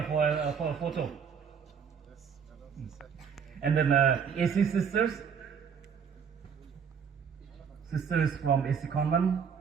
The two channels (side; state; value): left; quieter; 6.9 dB